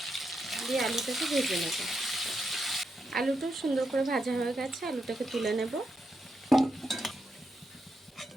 দিয়ে আলুটাকে ভেজে নেব। আলুটাও সুন্দর করে ভাজা হয়ে গেছে, আলুটাকে তুলে নেব।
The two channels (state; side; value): normal; both; correlation 0.83